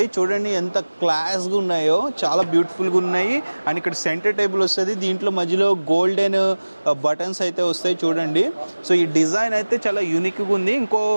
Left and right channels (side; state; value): both; inverted; correlation -1.00